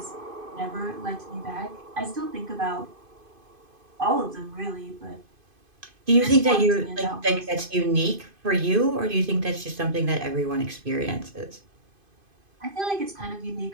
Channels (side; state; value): left; late; 2.5 ms